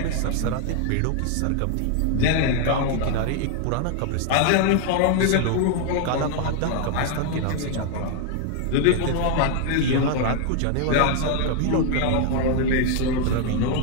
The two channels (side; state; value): both; different; correlation 0.00